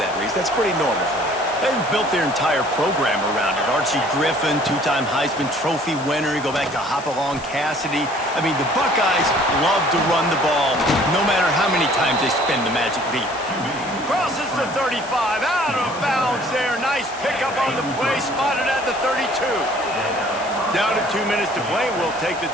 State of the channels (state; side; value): noise; left; hiss, 17 dB below the sound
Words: Reese. That's pretty normal for them. They've built their entire program around it. Archie Griffin, two-time Heisman Trophy winner. You go back to Hopalong Cassidy. I mean, the Buckeyes love to run the ball, no matter how many times they spin the magic beat. Crosses the 35, out of bounds there. Nice pickup on the play, spotted at the 32. Down to 2 minutes to play. We'll take the